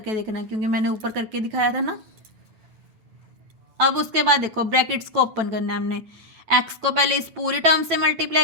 देखना क्योंकि मैंने ऊपर करके दिखाया था ना। अब उसके बाद देखो ब्रैकेट्स को ओपन करना है हमने, x को पहले इस पूरी टर्म से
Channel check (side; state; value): left; late; 9.1 ms